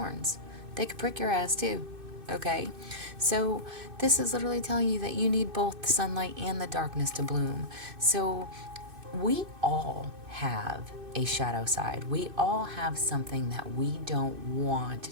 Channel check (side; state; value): left; late; 2.6 ms